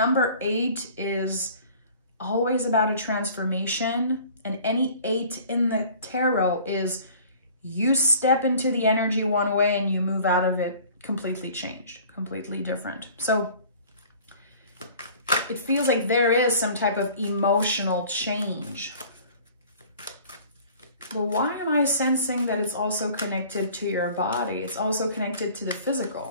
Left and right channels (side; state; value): both; inverted; correlation -0.49